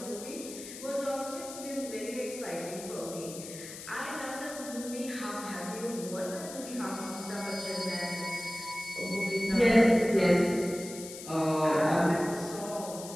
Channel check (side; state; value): left; noise; hiss, 12 dB below the sound